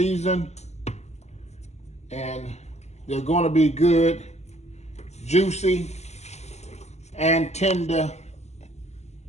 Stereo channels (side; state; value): right; late; 0.32 ms